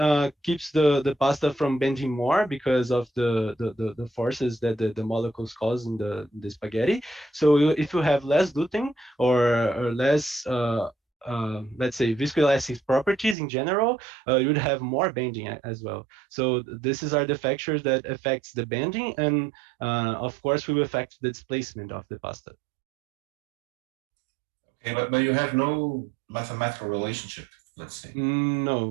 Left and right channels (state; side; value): drops out; left; at 13.4 s